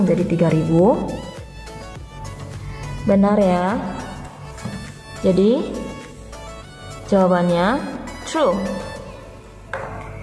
menjadi 3000? Benar ya. Jadi jawabannya true.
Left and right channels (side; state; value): both; identical; correlation 1.00